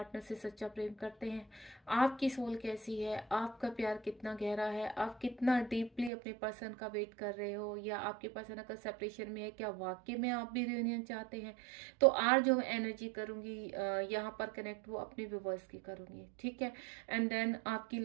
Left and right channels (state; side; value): drops out; left; at 6.1 s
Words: से सच्चा प्रेम करते हैं, आपकी सोल कैसी है, आपका प्यार कितना गहरा है, आप कितना डीपली अपने पर्सन का वेट कर रहे हो, या आपके पर्सन अगर सेपरेशन में है, क्या वाकई में आप भी रियूनियन चाहते हैं। तो आज जो मैं एनर्जी करूंगी यहाँ पर कनेक्ट, वो अपने व्यूवर्स की करूंगी, ठीक है। एंड देन आपकी